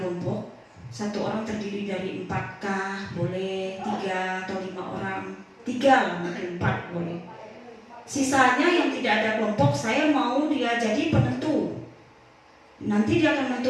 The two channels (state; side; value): identical; both; correlation 1.00